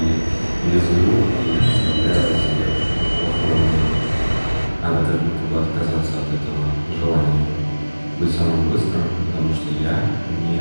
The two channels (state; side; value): inverted; both; correlation -1.00